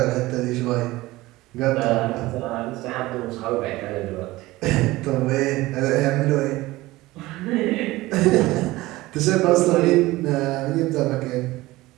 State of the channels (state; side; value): quieter; left; 18.9 dB